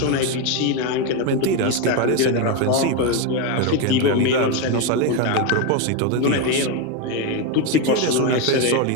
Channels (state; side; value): different; both; correlation 0.03